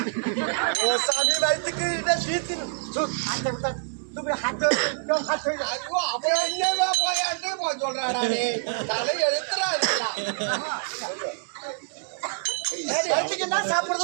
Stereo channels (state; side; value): silent; left; digital silence